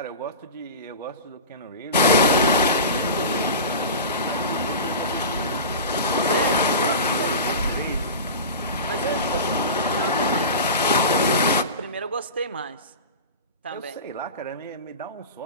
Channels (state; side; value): inverted; both; correlation -0.30